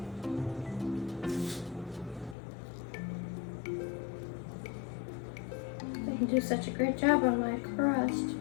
I can do such a great job on my crust.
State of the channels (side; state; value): right; drops out; at 2.4 s